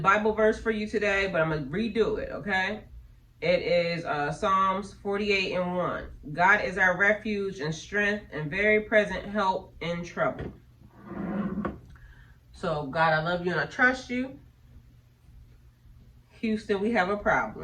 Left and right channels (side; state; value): both; identical; correlation 1.00